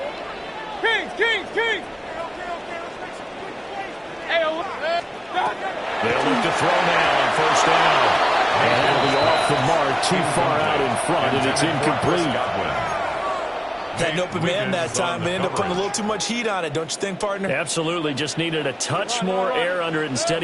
Kings! They'll look to throw now on 1st down. And that'll be off the mark, too far out in front, and it's incomplete. Had an open man that time, but ended up putting a little too much heat on it, don't you think, partner? Absolutely, just needed a touch more air under it. Instead,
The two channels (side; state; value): both; identical; correlation 1.00